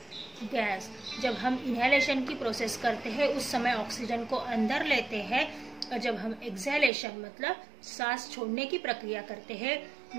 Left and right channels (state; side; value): drops out; left; at 6.9 s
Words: gas. जब हम इनहेलेशन की प्रोसेस करते हैं उस समय ऑक्सीजन को अंदर लेते हैं, और जब हम एक्सहेलेशन मतलब सांस छोड़ने की प्रक्रिया करते हैं,